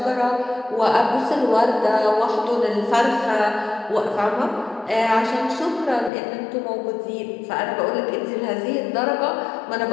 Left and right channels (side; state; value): right; drops out; at 6.1 s